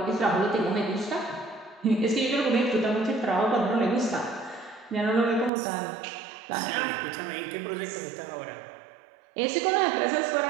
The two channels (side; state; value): left; drops out; at 5.5 s